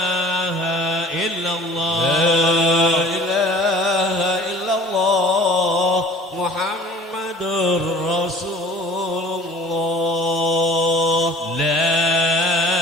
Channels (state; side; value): normal; both; correlation 0.46